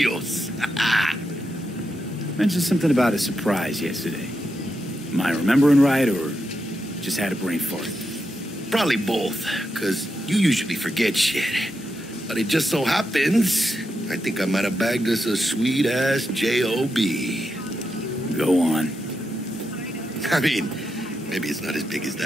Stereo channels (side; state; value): both; normal; correlation 0.85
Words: Mentioned something about a surprise yesterday. Am I remembering right, or just had a brain fart? Probably both, because you usually forget shit. But it just so happens, I think I might have bagged us a sweet-ass J.O.B. Go on. I mean, maybe it's not as big as